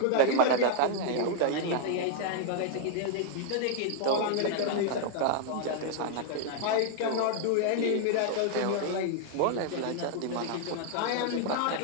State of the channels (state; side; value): different; both; correlation -0.01